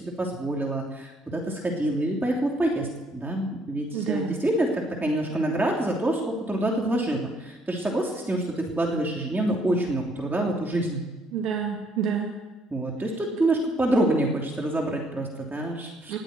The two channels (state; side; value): normal; both; correlation 0.67